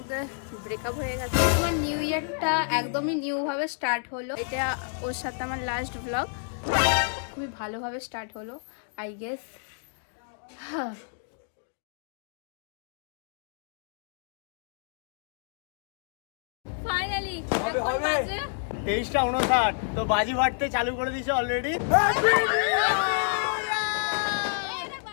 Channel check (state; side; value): silent; right; digital silence